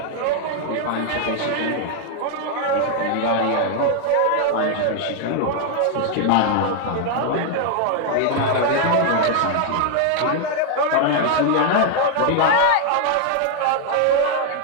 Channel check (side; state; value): both; different; correlation 0.00